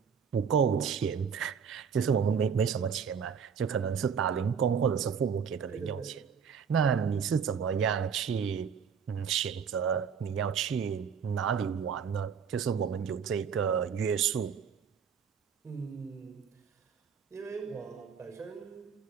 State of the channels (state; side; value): quieter; left; 6.9 dB